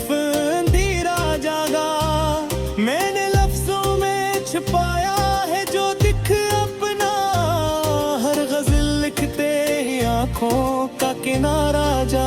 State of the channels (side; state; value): both; identical; correlation 1.00